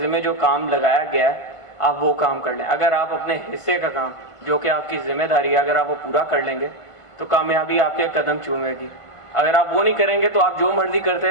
جو کام لگایا گیا ہے آپ وہ کام کر لیں. اگر آپ اپنے حصے کا کام جو کہ آپ کی ذمہ داری ہے اگر آپ وہ پورا کر لیں گے تو کامیابی آپ کے قدم چومے گی. اگر آپ وہ نہیں کریں گے تو آپ جو مرضی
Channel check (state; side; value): late; right; 1.5 ms